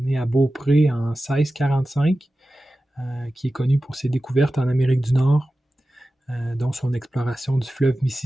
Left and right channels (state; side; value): normal; both; correlation 0.95